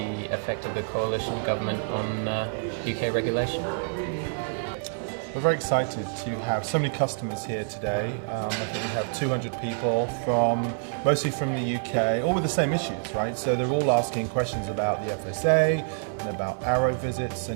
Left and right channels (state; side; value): silent; left; 60 dB below the other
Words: effect of the coalition government on UK regulation. We're very excited to have so many customers here today. I think we have 200 people mostly from the UK, all with the same issues, right? So they're all asking questions about the FSA and about Arrow visits,